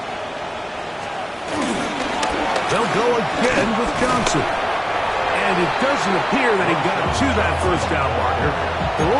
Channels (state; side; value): identical; both; correlation 1.00